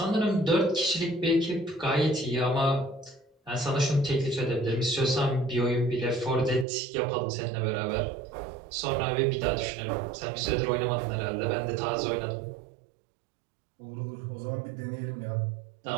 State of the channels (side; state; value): left; drops out; at 6.7 s